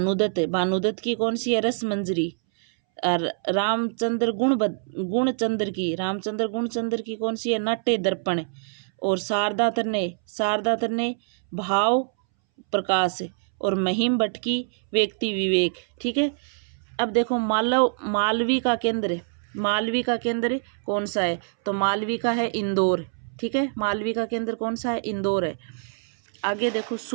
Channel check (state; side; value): silent; left; 62 dB below the other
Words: है। भानुदत्त की कौन सी है, रस मंजरी। और रामचंद्र गुणचंद्र की, रामचंद्र गुणचंद्र की कौन सी है, नाट्य दर्पण। और शारदा तन्ने भाव प्रकाश। और महिम भट्ट की व्यक्ति विवेक। ठीक है। अब देखो मालवी का केंद्र, मालवी का केंद्र कौन सा है, तो मालवी का है इंदौर। ठीक है। मालवी का केंद्र कौन सा है, इंदौर है। आगे देखो